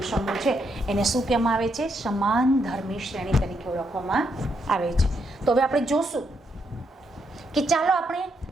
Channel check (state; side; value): normal; both; correlation 0.78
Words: સમૂહ છે એને શું કહેવામાં આવે છે? સમાન ધર્મી શ્રેણી તરીકે ઓળખવામાં આવે છે. તો હવે આપણે જોશું કે ચાલો આપણે